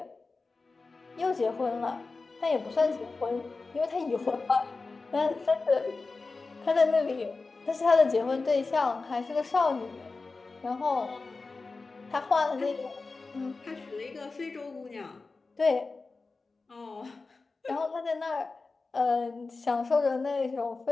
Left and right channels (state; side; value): quieter; right; 3.9 dB